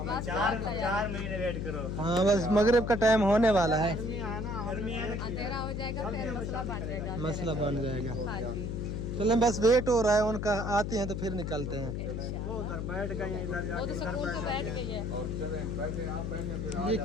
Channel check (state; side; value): noise; left; hum, 3 dB below the sound